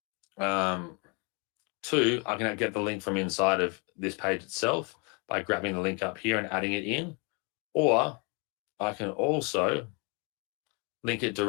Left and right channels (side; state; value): right; quieter; 33.4 dB